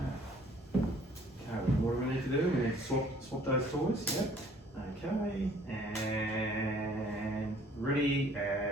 what do we need to do? We need to swap those toys, yep. Okay, and ready,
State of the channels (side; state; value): both; normal; correlation 0.57